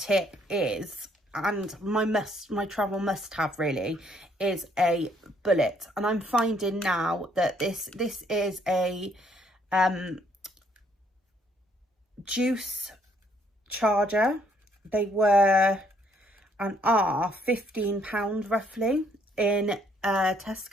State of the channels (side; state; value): both; normal; correlation 0.67